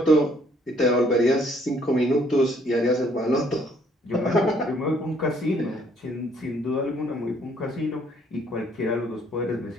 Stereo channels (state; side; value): normal; both; correlation 0.64